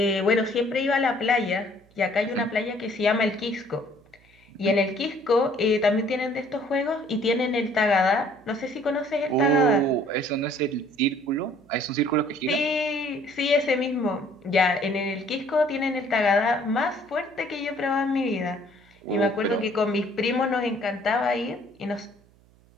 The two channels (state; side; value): noise; right; hum, 30 dB below the sound